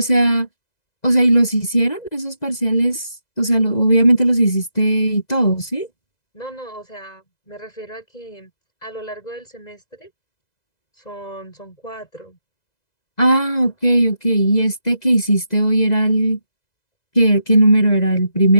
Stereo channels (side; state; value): right; late; 2.0 ms